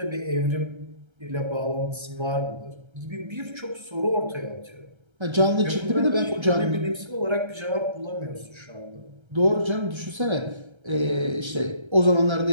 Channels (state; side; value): late; left; 1.3 ms